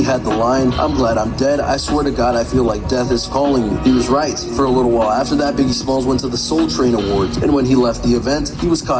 had the line, "I'm glad I'm dead, I swear to God I feel like death is calling me." He was right. For a little while after that, Biggie Smalls went to the Soul Train Awards, and when he left the event, he was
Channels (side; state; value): both; identical; correlation 1.00